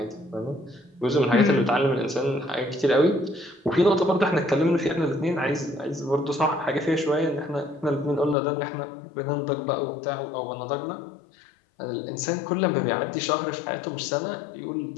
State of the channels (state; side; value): drops out; right; at 8.3 s